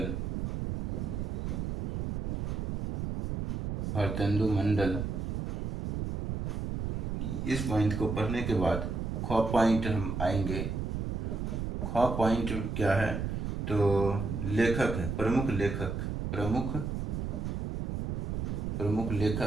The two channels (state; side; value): noise; right; rumble, 2 dB below the sound